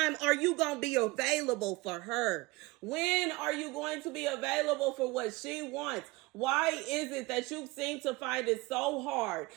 are you going to be available for her? When are you going to be available for what she wants? Why is it that you seem to find it so hard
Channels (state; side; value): quieter; left; 22.5 dB